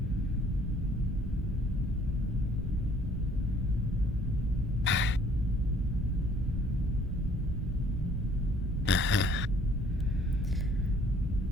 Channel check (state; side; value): normal; both; correlation 0.59